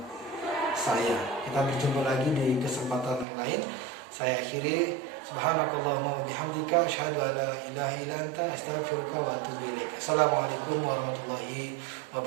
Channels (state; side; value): drops out; left; at 3.2 s